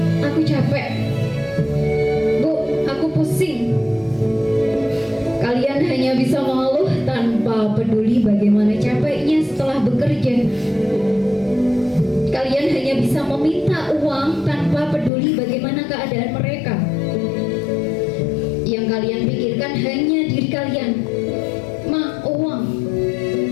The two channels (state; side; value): drops out; right; at 15.1 s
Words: bagaimana capeknya setelah bekerja. Kalian hanya bisa meminta uang tanpa peduli bagaimana keadaan mereka. Yang kalian pikirkan hanya diri kalian. Ma, uang.